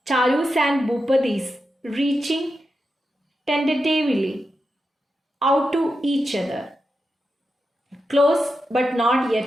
Charu's and Bhupati's, reaching tentatively out to each other, close but not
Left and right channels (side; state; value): both; normal; correlation 0.89